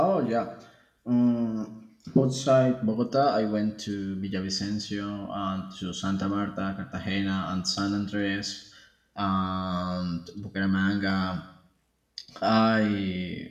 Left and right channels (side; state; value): both; identical; correlation 1.00